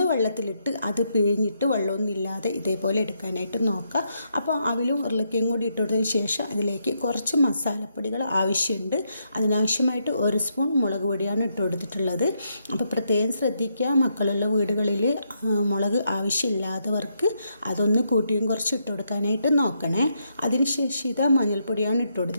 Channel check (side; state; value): both; inverted; correlation -0.79